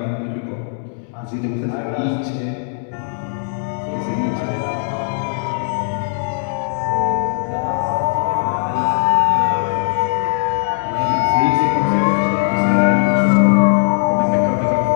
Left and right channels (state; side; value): silent; right; digital silence